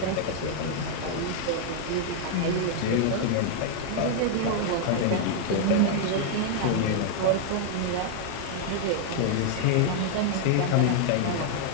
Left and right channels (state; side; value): different; both; correlation -0.01